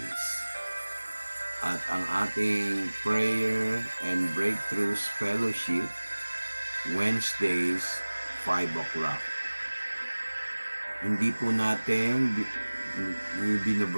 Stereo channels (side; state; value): both; inverted; correlation -1.00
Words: At ang ating prayer and breakthroughs fellowship Wednesdays 5 o'clock. Hindi po natin